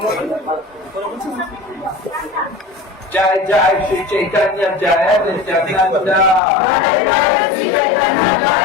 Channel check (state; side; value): drops out; right; at 6.4 s